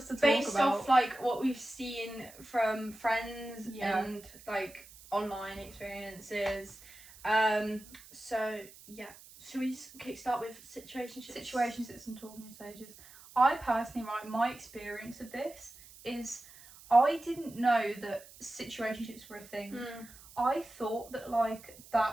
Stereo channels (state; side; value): noise; right; hiss, 20 dB below the sound